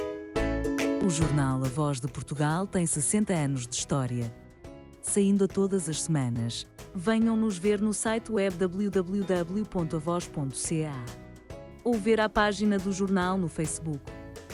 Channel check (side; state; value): both; identical; correlation 1.00